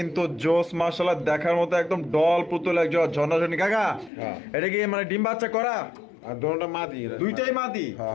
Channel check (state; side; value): drops out; right; at 4.1 s